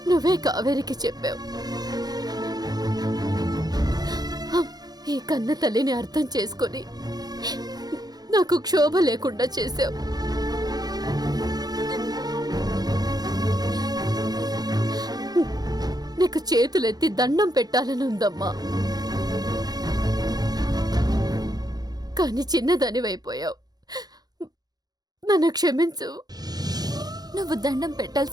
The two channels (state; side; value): late; left; 0.19 ms